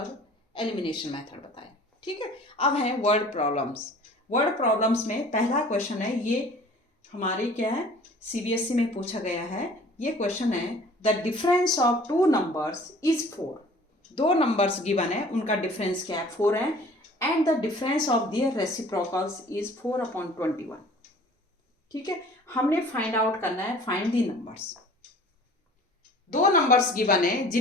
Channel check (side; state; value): both; normal; correlation 0.49